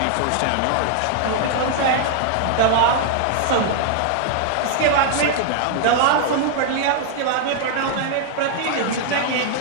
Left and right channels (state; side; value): different; both; correlation 0.00